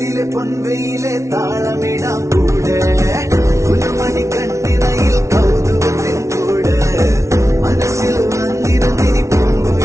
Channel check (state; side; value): late; left; 0.14 ms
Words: പൊൻവെയിലെ താളമിടാം കൂടെ കുലുമണി കണ്ണിനയിൽ കൗതുകത്തിൻ കൂട് മനസ്സിൽ വന്നിരുന്നിനി